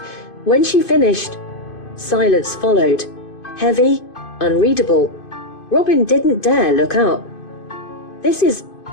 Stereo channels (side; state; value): right; late; 2.5 ms